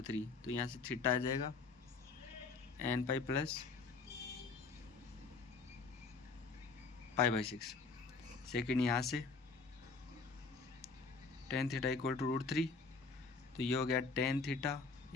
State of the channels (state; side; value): quieter; right; 4.4 dB